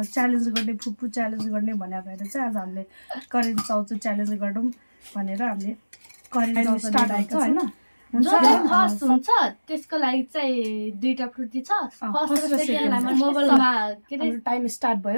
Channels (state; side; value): inverted; both; correlation -1.00